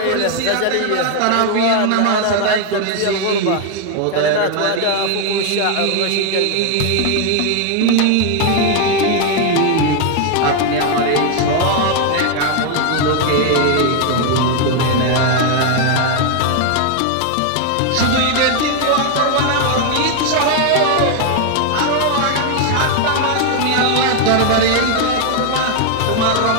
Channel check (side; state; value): both; different; correlation 0.01